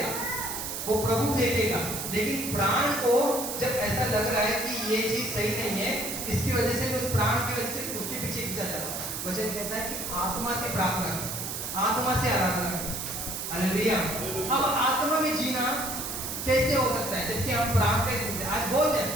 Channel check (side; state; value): right; noise; hiss, 5 dB below the sound